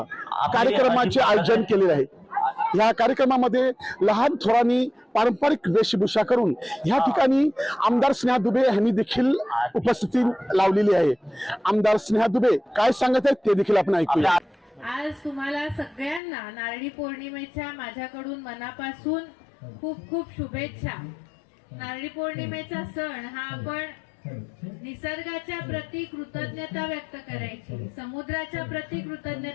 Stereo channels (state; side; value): drops out; right; at 16.2 s